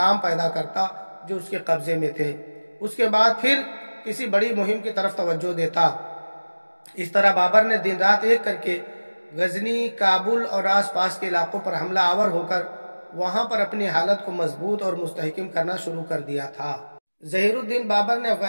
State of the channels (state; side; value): inverted; both; correlation -1.00